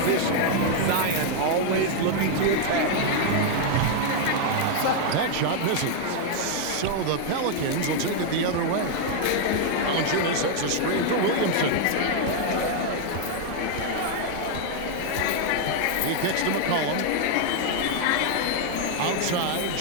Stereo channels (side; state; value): both; different; correlation 0.00